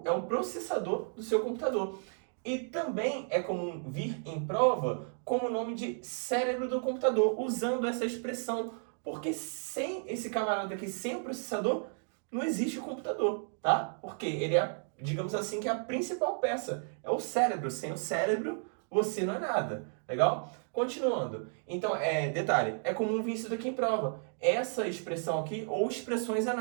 é o processador do seu computador. E também é comum vir em prova como o nome de cérebro do computador, usando essa expressão, porque sem esse camarada aqui, sem o processador, não existe o computador, tá? Porque ele é, digamos assim, que é a principal peça, é o cérebro. Sem o cérebro, você não é nada, legal? Continuando, então, detalhe, é comum vir isso daqui em prova, essa expressão aqui, ou expressões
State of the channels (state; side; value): silent; left; 56 dB below the other